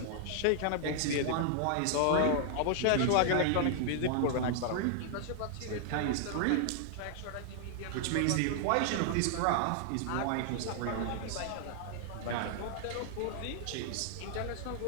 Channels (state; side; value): different; both; correlation -0.01